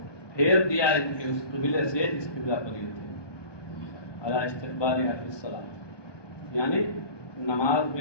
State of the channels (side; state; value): right; late; 1.2 ms